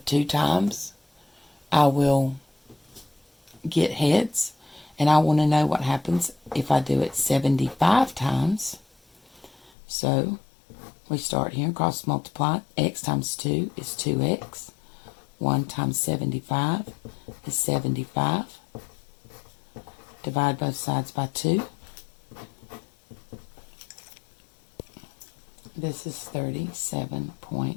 2 times I will get heads. And I want to know what happens if I do it 75 times. So we start here and cross multiply. X times 2 is 2x. 1 times 75 is 75. Divide both sides by 2. This is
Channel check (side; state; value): right; drops out; at 9.7 s